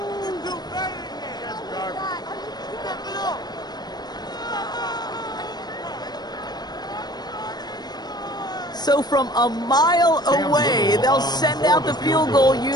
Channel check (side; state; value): right; late; 0.20 ms